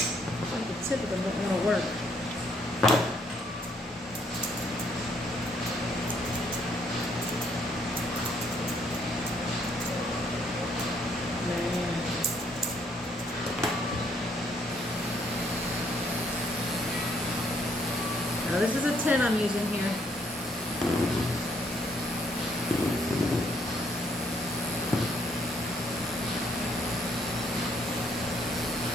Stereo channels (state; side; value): normal; both; correlation 0.69